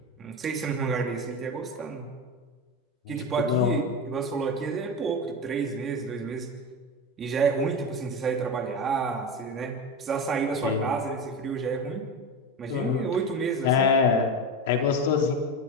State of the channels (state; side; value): normal; both; correlation 0.22